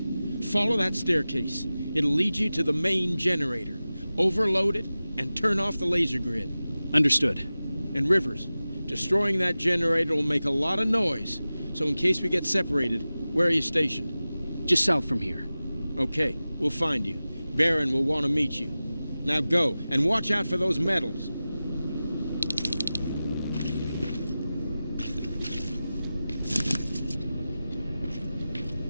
Follow that staircase. It'll lead you to the main generator. Overload it and turn off the laser grid. Understood. And Rivers, destroying that generator will make a lot of noise. So in case we get separated, where are you stationed? Just south from here. Okay, we'll find you. Barron will want to meet you. Now go, and watch out for those medals.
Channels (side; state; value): both; inverted; correlation -0.96